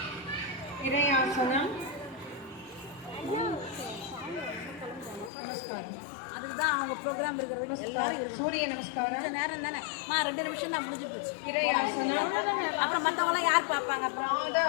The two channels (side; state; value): right; drops out; at 5.3 s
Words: இரையாசனம். நமஸ்காரம். அதுதான் அவங்க ப்ரோக்ராம் இருக்கிற எல்லாரும் சூரிய நமஸ்காரம். கொஞ்ச நேரம் தானே 2 நிமிஷம் தான் முடிஞ்சு போச்சு. இரையாசனம். அப்புறம் மற்றவங்களாம் யார் பார்ப்பாங்க? அப்புறம் பாத